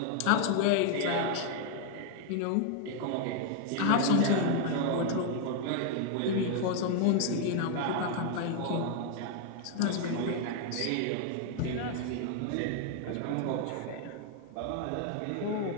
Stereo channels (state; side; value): different; both; correlation 0.00